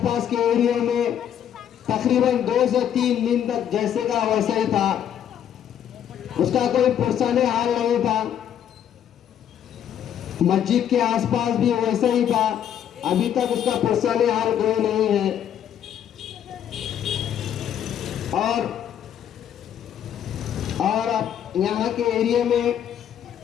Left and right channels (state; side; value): quieter; right; 9.7 dB